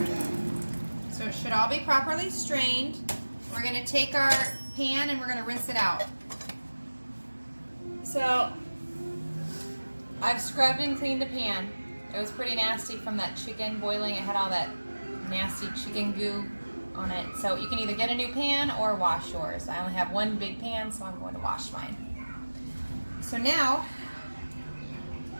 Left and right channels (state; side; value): inverted; both; correlation -1.00